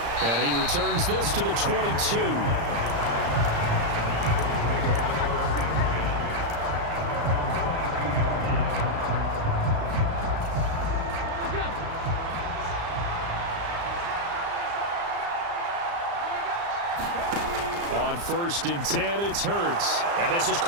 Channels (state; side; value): late; left; 35 ms